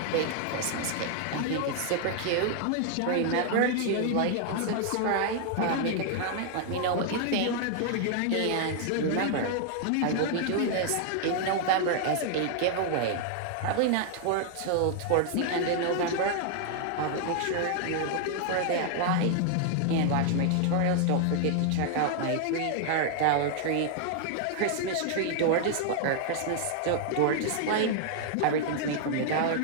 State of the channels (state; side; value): different; both; correlation 0.00